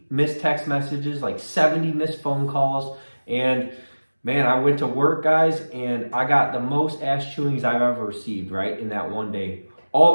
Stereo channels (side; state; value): both; inverted; correlation -1.00